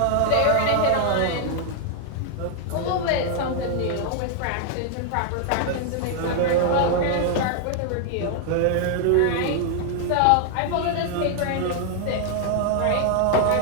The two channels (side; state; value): both; different; correlation 0.00